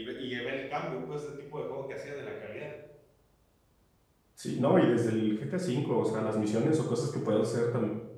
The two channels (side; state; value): both; identical; correlation 1.00